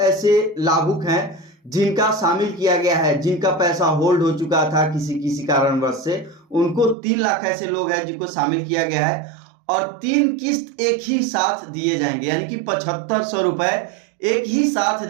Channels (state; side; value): drops out; left; at 7.0 s